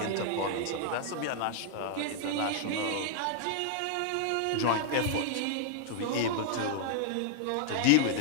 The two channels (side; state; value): both; different; correlation -0.01